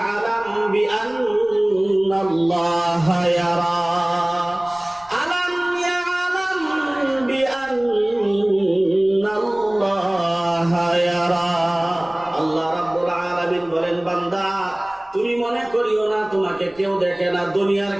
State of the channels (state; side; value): noise; right; rumble, 30 dB below the sound